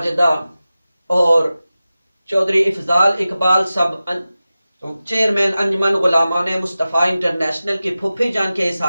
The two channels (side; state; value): both; inverted; correlation -0.95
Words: اور چودھری افضال اقبال صاحب چیئرمین انجمن غلامان مصطفیٰ انٹرنیشنل کی پھوپھی جان کے